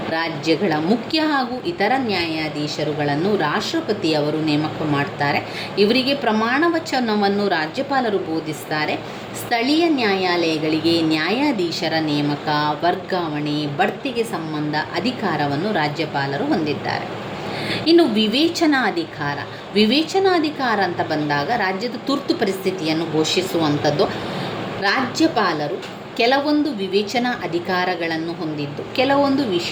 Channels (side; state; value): both; identical; correlation 1.00